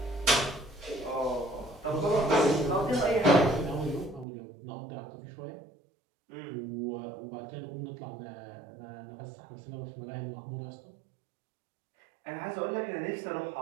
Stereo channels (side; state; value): left; drops out; at 4.2 s